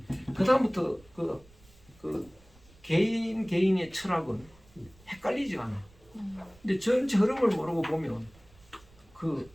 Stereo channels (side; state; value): right; noise; rumble, 26 dB below the sound